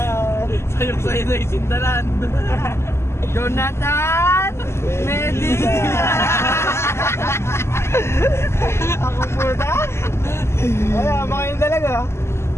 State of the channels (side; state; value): right; late; 0.13 ms